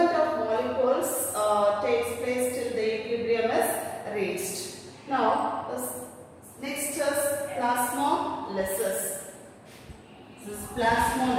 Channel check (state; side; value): identical; both; correlation 1.00